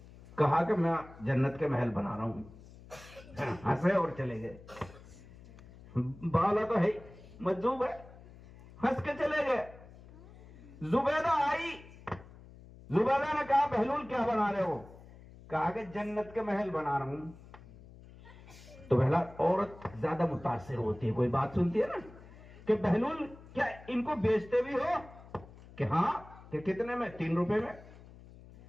کہا کہ میں جنت کے محل بنا رہا ہوں. ہنسے اور چلے گئے. بالا تو ہے، مجذوب ہے، ہنس کے چلے گئے. زبیدہ آئی. زبیدہ نے کہا بہلول کیا بنا رہے ہو؟ کہا کہ جنت کے محل بنا رہا ہوں. تو پہلا عورت زیادہ متاثر ہوتی ہے، کوئی بات سنتی ہے نا، کہ بہلول کیا ان کو بیچتے بھی ہو؟ کہ ہاں. کہ کتنے میں؟ 3 روپے میں.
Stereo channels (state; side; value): noise; left; hum, 20 dB below the sound